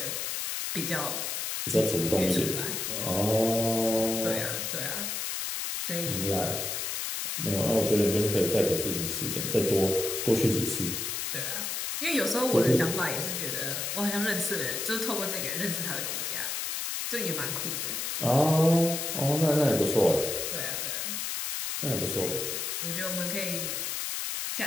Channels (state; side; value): noise; left; hiss, 2 dB below the sound